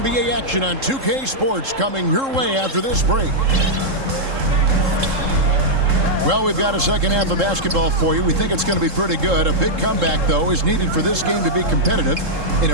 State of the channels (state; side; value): late; left; 3.7 ms